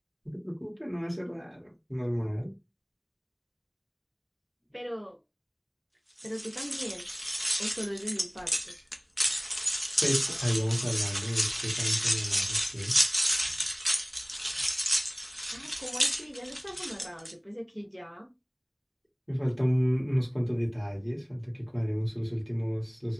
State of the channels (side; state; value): both; identical; correlation 1.00